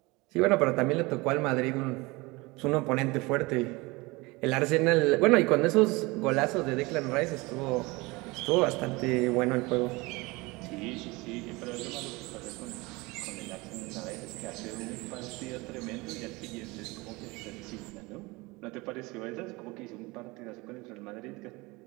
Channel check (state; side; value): quieter; left; 23.7 dB